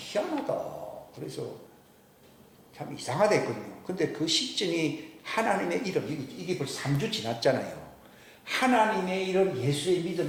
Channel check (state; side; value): identical; both; correlation 1.00